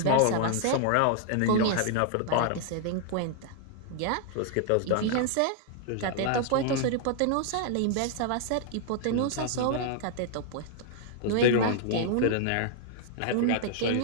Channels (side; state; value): both; different; correlation -0.01